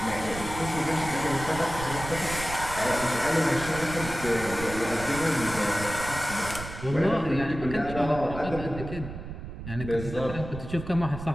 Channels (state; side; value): noise; right; rumble, 10 dB below the sound